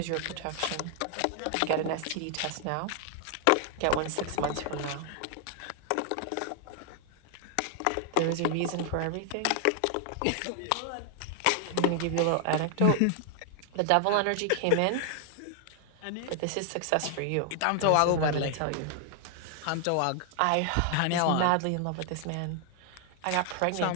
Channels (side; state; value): both; different; correlation 0.00